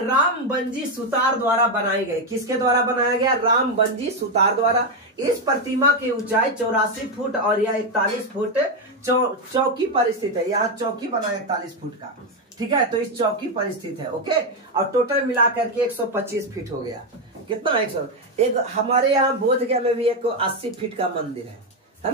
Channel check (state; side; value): normal; both; correlation 0.06